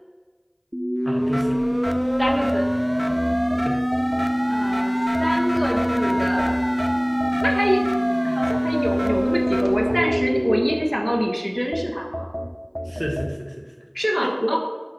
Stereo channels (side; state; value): both; identical; correlation 1.00